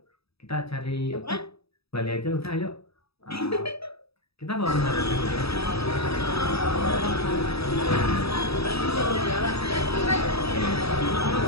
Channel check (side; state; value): right; late; 0.77 ms